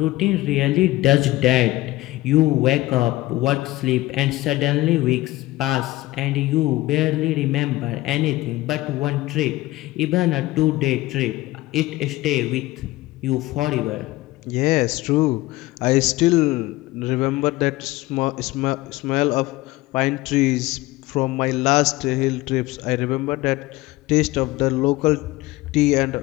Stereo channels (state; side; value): quieter; right; 18.3 dB